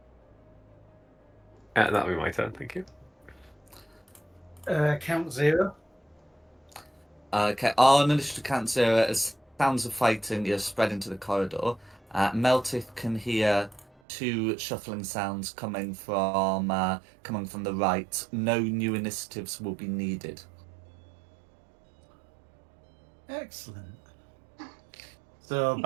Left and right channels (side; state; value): left; drops out; at 13.9 s